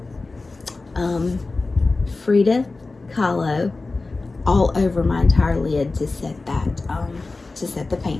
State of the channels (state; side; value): quieter; right; 3.5 dB